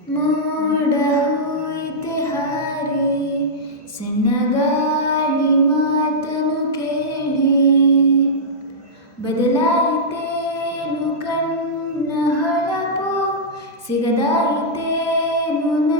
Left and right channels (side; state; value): both; normal; correlation -0.12